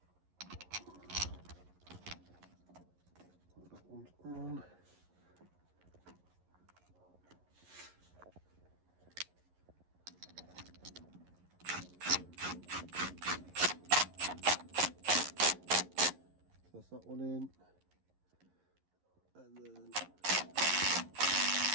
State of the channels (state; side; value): late; left; 11 ms